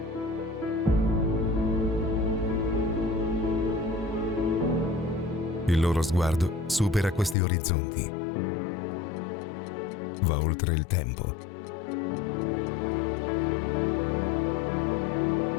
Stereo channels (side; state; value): right; drops out; at 7.4 s